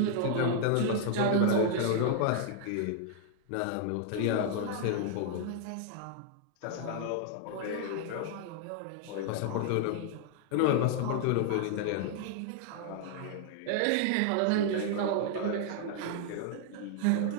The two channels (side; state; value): both; different; correlation 0.00